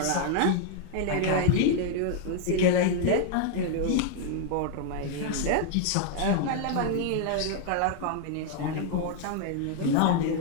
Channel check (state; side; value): different; both; correlation 0.00